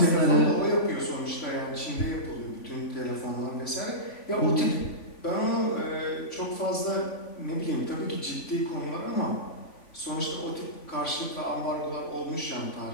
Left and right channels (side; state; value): right; late; 3.5 ms